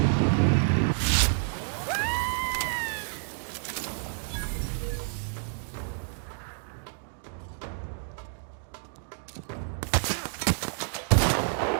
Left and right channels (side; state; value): left; silent; digital silence